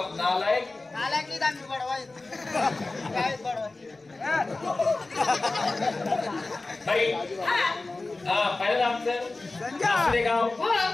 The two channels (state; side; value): quieter; right; 3.3 dB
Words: नालायक. नालायक आम्ही बडवाय काय बडवाय भाई पहिलं आमचं गाव